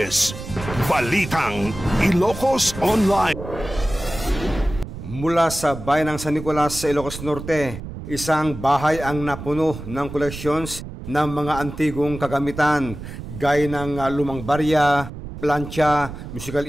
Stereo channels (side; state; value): right; noise; rumble, 11 dB below the sound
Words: Balitang Ilocos Online. Mula sa bayan ng San Nicolas sa Ilocos Norte, isang bahay ang napuno ng collections ng mga antigong kagamitan gaya ng lumang barya, plancha, musical